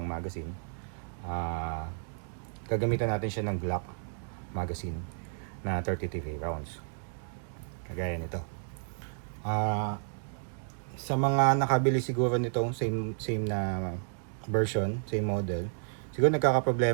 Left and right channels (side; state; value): left; silent; 56 dB below the other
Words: magazine. Gagamitan natin siya ng Glock magazine na 33 rounds, kagaya nito. Sa mga nakabili siguro nitong same na version, same model, siguro